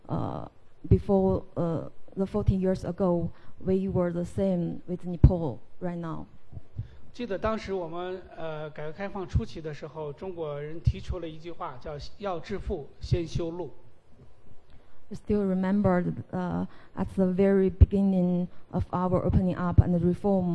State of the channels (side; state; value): both; identical; correlation 1.00